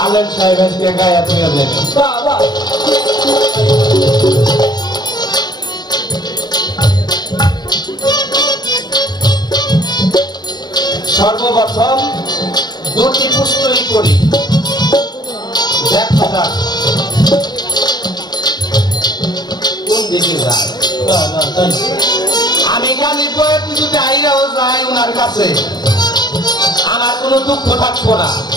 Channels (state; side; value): late; right; 0.20 ms